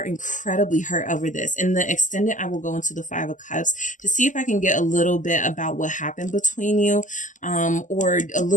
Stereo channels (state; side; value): late; right; 0.37 ms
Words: incredibly hurt over this. In the extended, I will go into the Five of Cups to see if I can get a little bit about what happened between you, or a